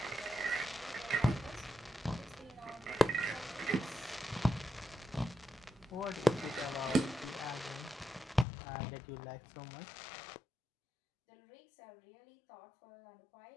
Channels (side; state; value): right; drops out; at 8.5 s